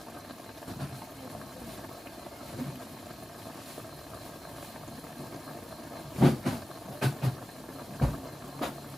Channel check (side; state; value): both; normal; correlation 0.95